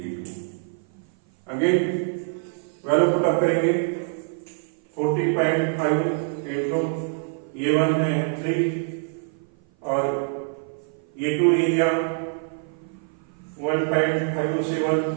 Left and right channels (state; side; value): silent; left; 56 dB below the other